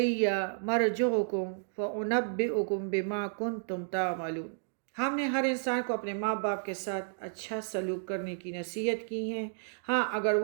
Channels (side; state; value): left; silent; digital silence